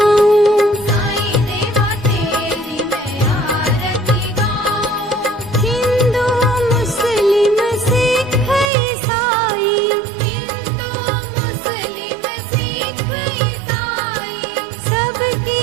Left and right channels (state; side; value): drops out; left; at 8.7 s